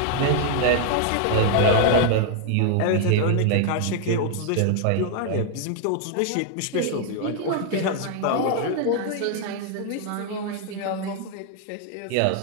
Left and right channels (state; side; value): different; both; correlation 0.00